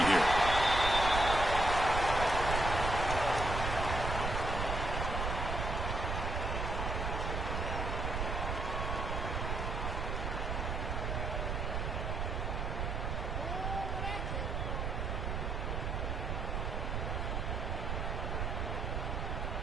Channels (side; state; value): right; noise; rumble, 1 dB below the sound